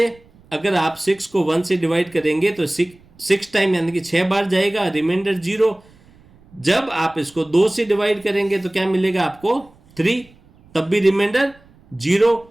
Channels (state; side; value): noise; right; rumble, 28 dB below the sound